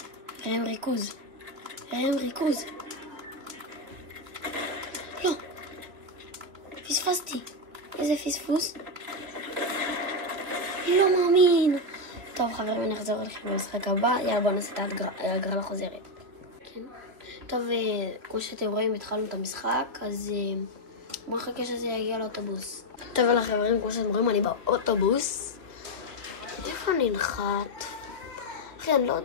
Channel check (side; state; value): left; late; 3.0 ms